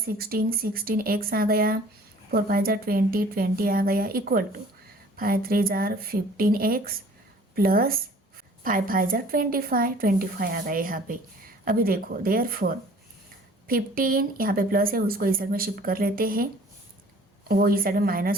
16x आ गया, 4 5 जार 20, 20 आ गया इक्वल टू 5 3 जार 15x प्लस 5 5 जार 25, 25 आ गया यहाँ पे। अभी देखो देयरफॉर 15 यहाँ पे प्लस है, उसको इस साइड में शिफ्ट कर लेते हैं, वो इस साइड में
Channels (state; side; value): normal; both; correlation 0.51